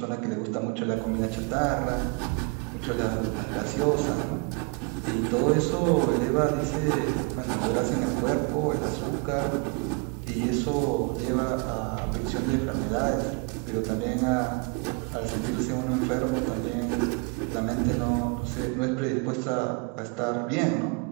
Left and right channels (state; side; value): quieter; left; 31.1 dB